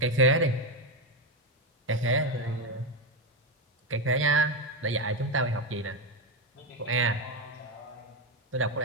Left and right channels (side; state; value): both; normal; correlation 0.10